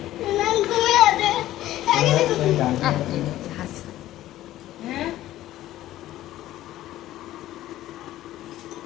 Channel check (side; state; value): right; quieter; 14.4 dB